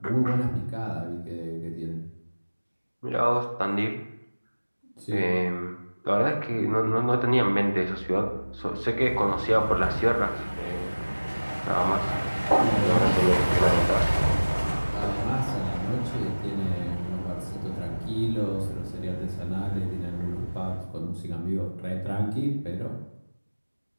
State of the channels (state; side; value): inverted; both; correlation -1.00